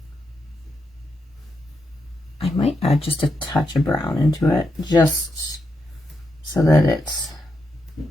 I might add just a touch of brown into it, just so that it's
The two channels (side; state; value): both; normal; correlation 0.83